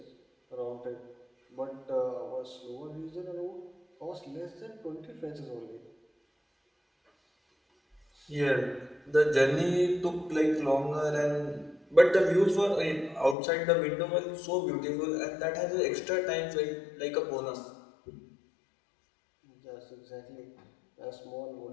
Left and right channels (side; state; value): right; drops out; at 13.4 s